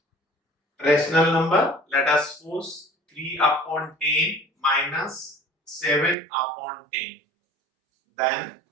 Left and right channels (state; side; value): drops out; left; at 6.2 s